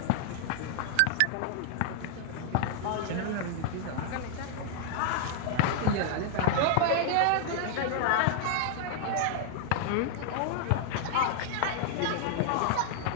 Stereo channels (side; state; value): both; different; correlation -0.01